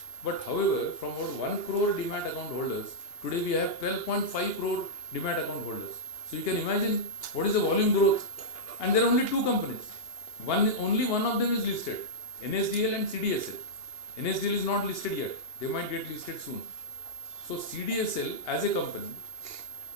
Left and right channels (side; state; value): right; late; 2.8 ms